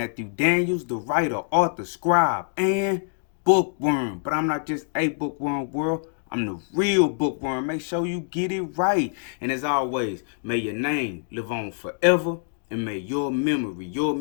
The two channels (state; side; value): silent; right; 62 dB below the other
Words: Daniels, the writer, author, scribe, and bookworm. But I'm not just a bookworm world. I'm the real bookworm. Make sure you get it right. And as always, may your name live on forever. And may your